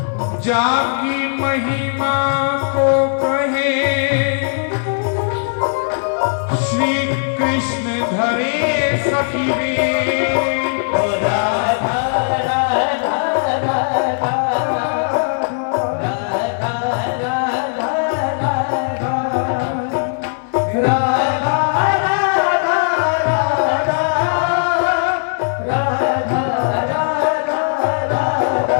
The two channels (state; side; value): silent; right; 61 dB below the other